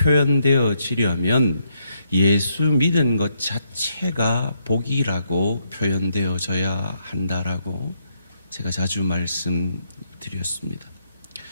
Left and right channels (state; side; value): inverted; both; correlation -0.77